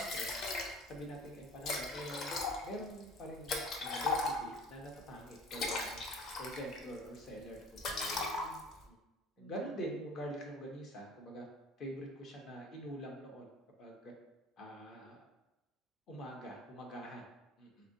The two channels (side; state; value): both; normal; correlation 0.45